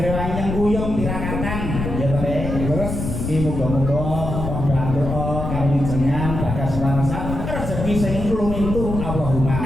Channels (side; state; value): left; noise; rumble, 4 dB below the sound